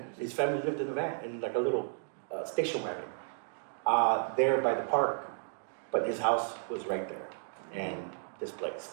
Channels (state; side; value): silent; left; digital silence